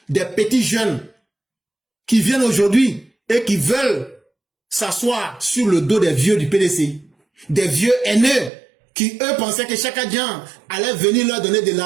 Des petits jeunes qui viennent aujourd'hui et qui veulent s'asseoir sur le dos des vieux du PDCI. Des vieux haineux qui, eux, pensaient que Chakadian allait venir leur donner de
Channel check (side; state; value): left; drops out; at 8.5 s